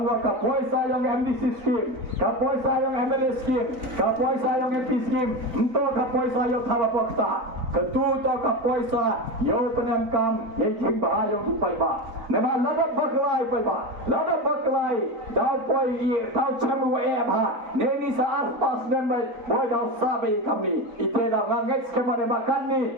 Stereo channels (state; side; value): late; left; 3.9 ms